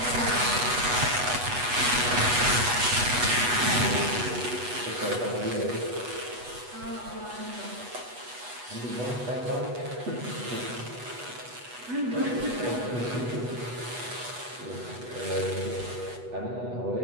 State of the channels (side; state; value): left; late; 8.2 ms